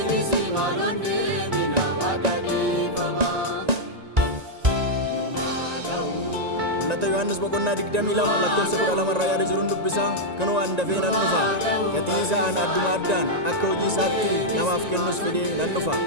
maaloon deebina waaqa dhiifama nu haa ga'u. Mul'ata Yohaannis boqonnaa 22 lakkoofsa 12 irraa yaada jiruun dubbisaa kunoo an dafee nan dhufa gatii isaa an adduma addaan akka hojii isaatti namaaf kennus fidee nan dhufa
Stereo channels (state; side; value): late; left; 1.9 ms